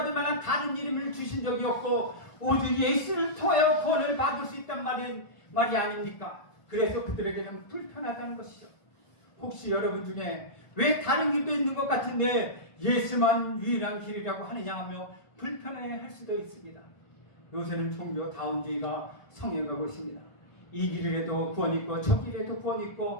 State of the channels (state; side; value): late; right; 1.5 ms